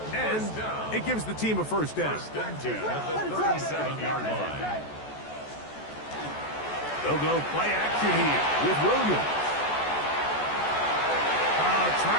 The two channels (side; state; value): right; late; 14 ms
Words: And it gives the team a first down. First and 10 at the 37-yard line. They'll go play action here with Williams.